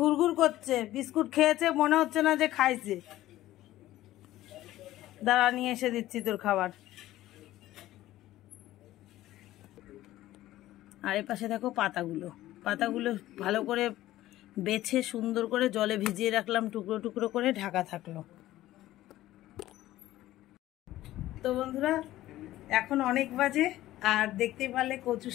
করছে, বিস্কুট খেয়েছে, মনে হচ্ছে না যে খাইছে। দাঁড়া, নিয়ে এসে দিচ্ছি তোর খাবার। আর এর পাশে দেখো পাতাগুলো ভালো করে বেছে সুন্দর করে জলে ভিজিয়ে রাখলাম, টুকরো টুকরো করে ঢাকা থাকলো। তো বন্ধুরা, এখন অনেক বাজে আর দেখতেই পারলে কচু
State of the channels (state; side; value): quieter; right; 15.1 dB